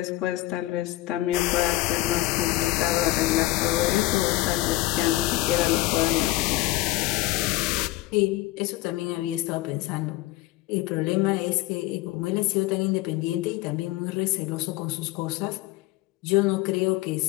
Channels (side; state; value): right; quieter; 18.0 dB